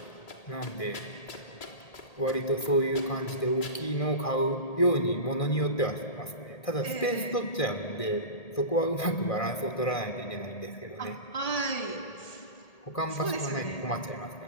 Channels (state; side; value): late; right; 1.8 ms